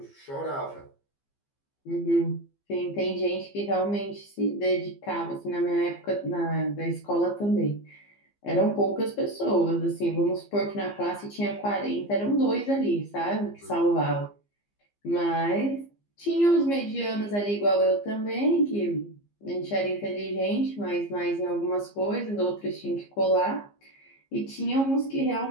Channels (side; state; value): right; late; 15 ms